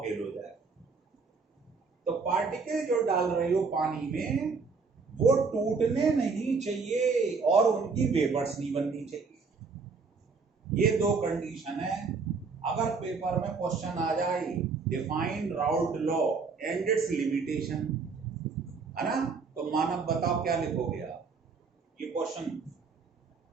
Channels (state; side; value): quieter; left; 4.8 dB